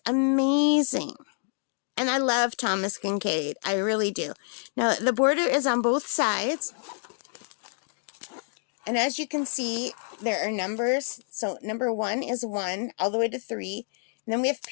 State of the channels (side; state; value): right; silent; digital silence